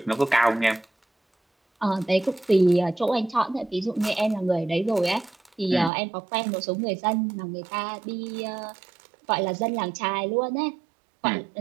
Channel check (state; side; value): drops out; left; at 5.9 s